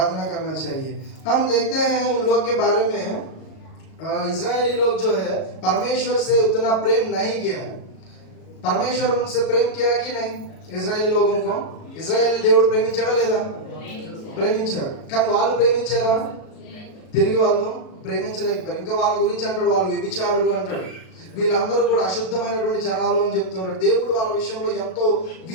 करना चाहिए। हम देखते हैं उन लोग के बारे में, इजरायली लोग जो है परमेश्वर से उतना प्रेम नहीं किया, परमेश्वर उनसे प्रेम किया कि नहीं, इजरायली लोगों को ఇజ్రాయేల్ దేవుడు ప్రేమించాడా లేదా, ప్రేమించాడు, కానీ వాళ్ళు ప్రేమించారా, తిరిగి వాళ్ళు ప్రేమించలేకపోయారు। ఇంకా వాళ్ళ గురించి అంటాడు, వాళ్ళు వ్యభిచారులు అంటాడు, వీళ్ళందరూ కూడా అశుద్ధమైనటువంటి జనాలు అని చెప్తున్నారు। దేవుడు వాళ్ళ విషయంలో ఎంతో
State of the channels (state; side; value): late; right; 37 ms